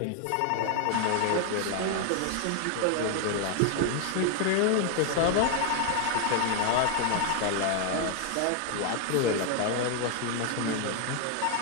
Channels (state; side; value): different; both; correlation 0.00